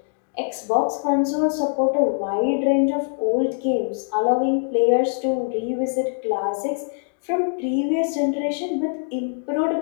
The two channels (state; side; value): silent; right; digital silence